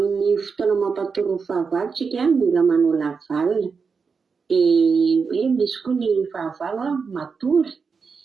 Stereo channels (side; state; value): left; quieter; 5.3 dB